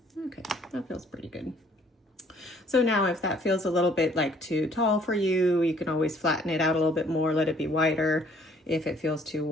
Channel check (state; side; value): normal; both; correlation 0.60